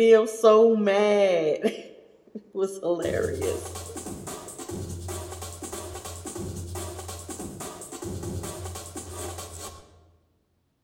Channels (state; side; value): identical; both; correlation 1.00